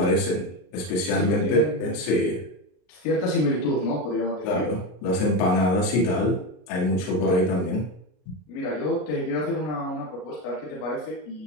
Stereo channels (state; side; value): late; right; 33 ms